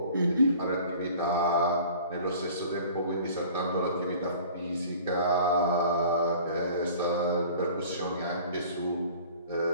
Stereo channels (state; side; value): inverted; both; correlation -0.47